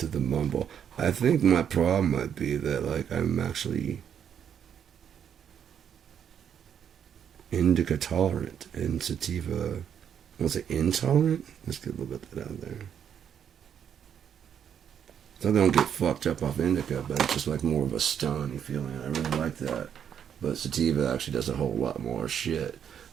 the mumble, I think my problem might be that like I'm actually indica tolerant and sativa, was it intolerant? Let's get a little bit of that out there. So I don't get fucked up off indica, but it's just like more of a stony feeling. I really like that. But sativa actually does a whole lot more shit.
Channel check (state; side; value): quieter; left; 8.5 dB